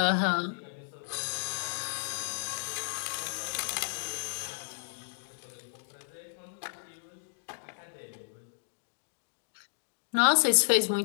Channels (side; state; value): right; silent; digital silence